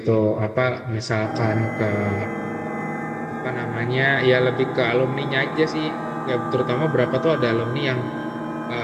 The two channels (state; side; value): identical; both; correlation 1.00